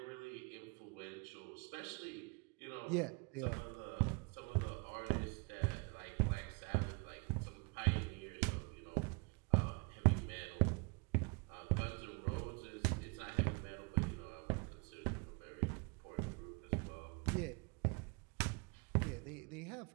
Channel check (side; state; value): left; quieter; 31.7 dB